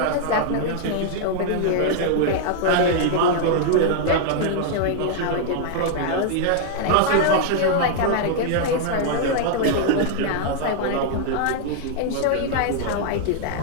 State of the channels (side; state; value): both; different; correlation -0.01